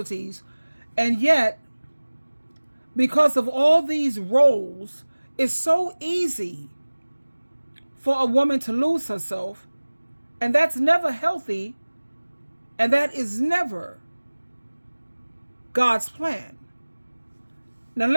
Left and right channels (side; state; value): both; inverted; correlation -1.00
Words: And yet, because of all these roles, it's so easy for a woman to lose herself, and that's never healthy, and that is never God's plan. Now